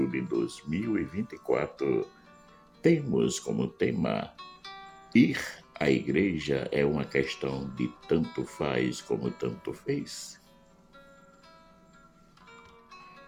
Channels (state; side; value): identical; both; correlation 1.00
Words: de 2024, temos como tema: ir à igreja é uma questão de tanto faz como tanto fez?